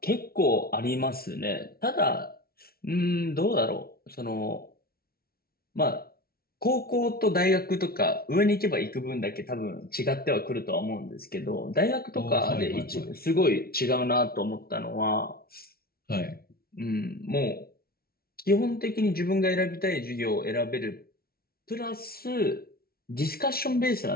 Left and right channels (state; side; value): late; right; 0.44 ms